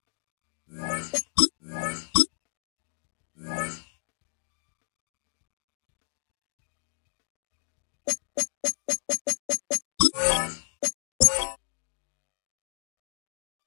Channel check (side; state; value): right; silent; digital silence